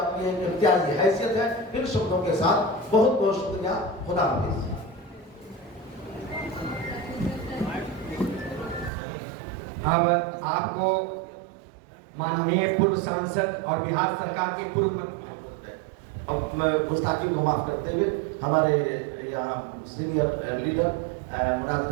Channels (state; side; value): drops out; left; at 8.9 s